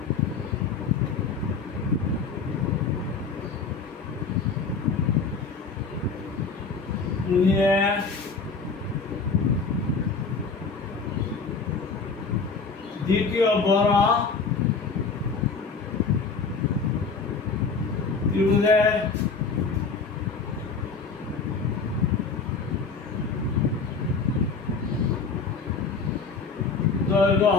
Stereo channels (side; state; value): right; quieter; 4.7 dB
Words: দ্বিতীয় বড় ত্রিভুজের দৈর্ঘ্য